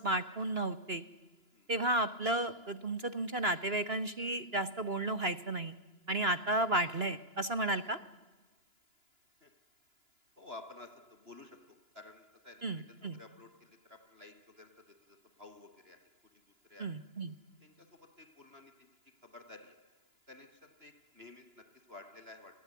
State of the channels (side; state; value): left; late; 2.9 ms